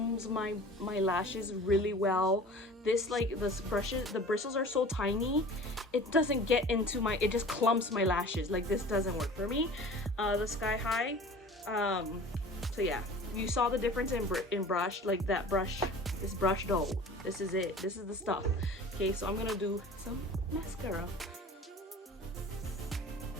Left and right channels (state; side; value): normal; both; correlation 0.42